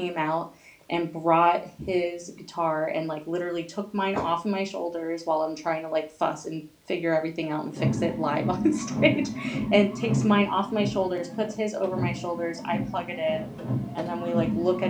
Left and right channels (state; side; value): identical; both; correlation 1.00